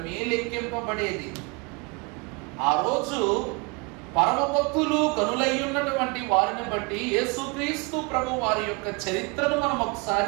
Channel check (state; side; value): quieter; left; 29.8 dB